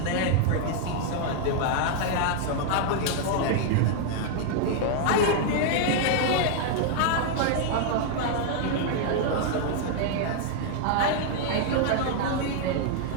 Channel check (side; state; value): both; different; correlation 0.00